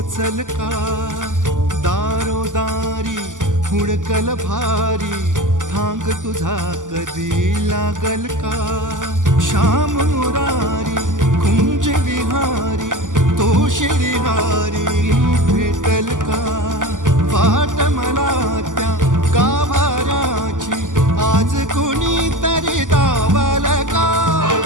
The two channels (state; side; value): late; left; 0.87 ms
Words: का दारोदारी हुडकल भारी थांग तुझा कधी लागल का श्याम मुरारी कुंज विहारी तो शिरिहारी भेटल का वाट मला त्या गाभाराची आज कुणी तरी दावल का